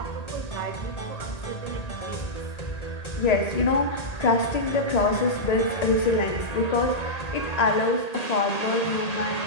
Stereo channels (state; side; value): late; right; 1.8 ms